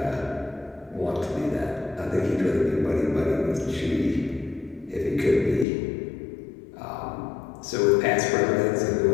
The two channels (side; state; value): right; drops out; at 5.7 s